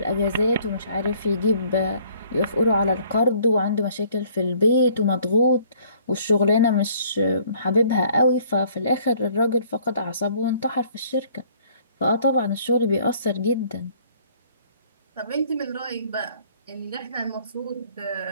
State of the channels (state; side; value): inverted; both; correlation -0.60